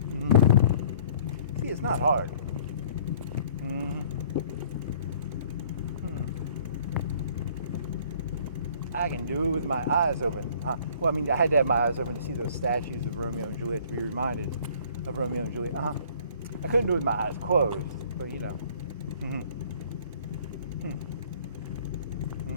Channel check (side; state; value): both; inverted; correlation -0.55